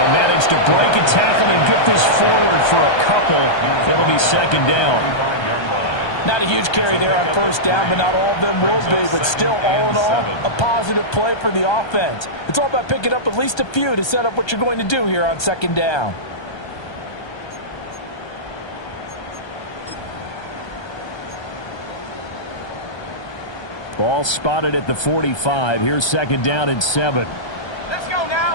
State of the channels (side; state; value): right; late; 1.2 ms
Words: manage to break a tackle and get this forward for a couple. It'll be second down. Not a huge carry there on first down, but not all of them will be. But still, all in all, a positive play for the offense. It's all about picking up at least a few to set up what you're going to do here on second down. Ball spotted at the 45. Here's second down and 7. Let's go